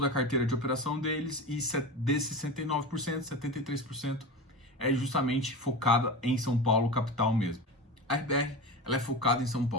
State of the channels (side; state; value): both; normal; correlation 0.27